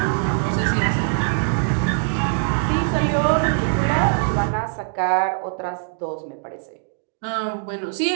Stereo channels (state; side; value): silent; left; digital silence